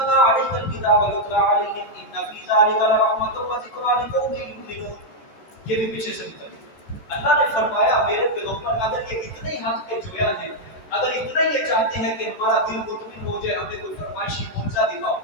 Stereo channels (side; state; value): right; late; 13 ms